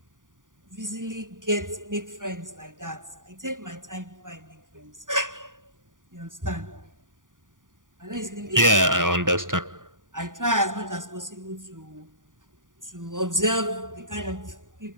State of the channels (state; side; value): late; left; 0.88 ms